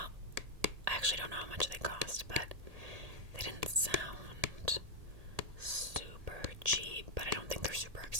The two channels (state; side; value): late; left; 1.8 ms